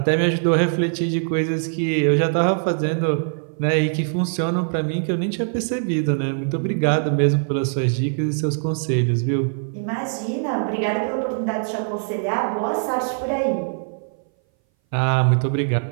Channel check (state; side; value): silent; left; 60 dB below the other